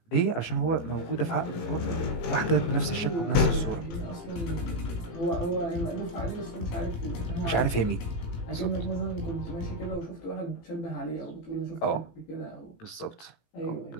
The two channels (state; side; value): late; right; 18 ms